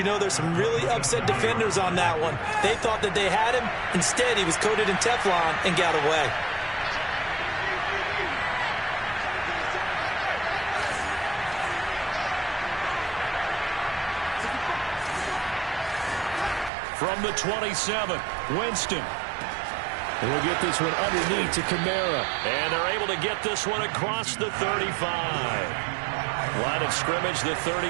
know, there's some really upset defenders on that one. They thought that they had him. Instead, he was coated in Teflon and got away. From the 27, Winston. We'll get this one underneath to Kamara. And they're able to get this one across the 35. Line of scrimmage, the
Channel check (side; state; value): left; drops out; at 16.7 s